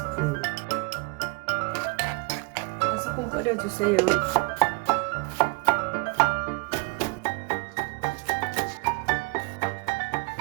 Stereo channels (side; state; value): left; quieter; 29.1 dB